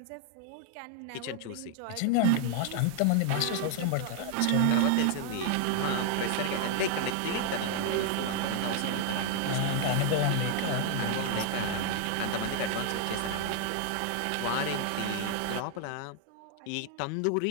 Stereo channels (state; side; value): different; both; correlation 0.00